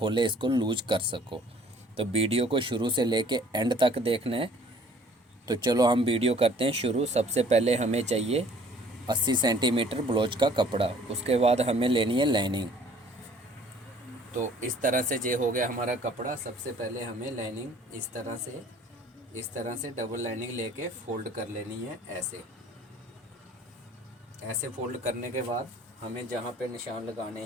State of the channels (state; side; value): normal; both; correlation 0.55